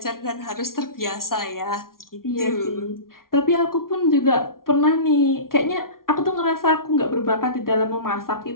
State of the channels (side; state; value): right; late; 0.92 ms